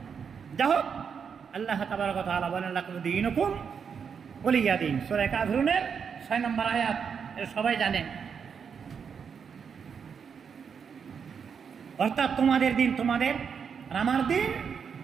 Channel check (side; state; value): left; quieter; 6.7 dB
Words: যা হোক, আল্লাহ তাবারক ওয়া তাআলা বলেন লাকুম দীনুকুম ওয়ালিয়া দীন, সূরা কাফিরুনের 6 নম্বর আয়াত, এটা সবাই জানেন। অর্থাৎ তোমাদের দিন তোমাদের, আর আমার দিন